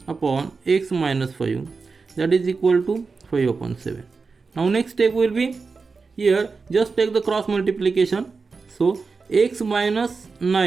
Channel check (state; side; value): quieter; left; 4.6 dB